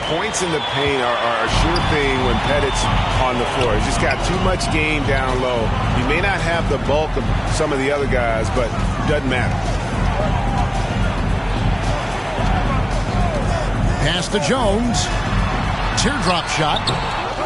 points in the paint are a sure thing when Pettit's on the floor. He's just got too much game down low. He may not have the bulk of some of the other guys, but it doesn't matter. Pass to Jones. Teardrop shot.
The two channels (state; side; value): identical; both; correlation 1.00